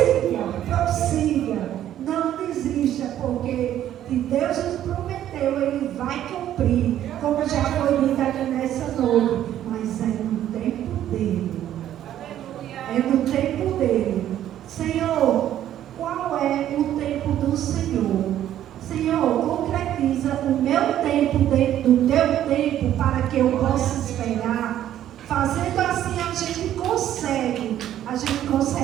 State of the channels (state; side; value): quieter; left; 11.7 dB